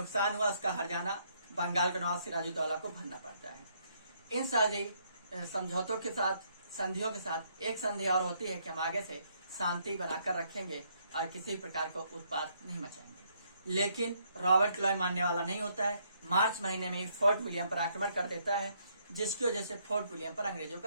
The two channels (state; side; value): inverted; both; correlation -0.71